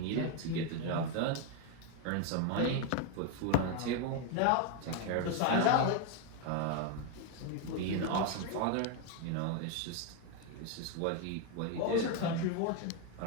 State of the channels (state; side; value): different; both; correlation 0.01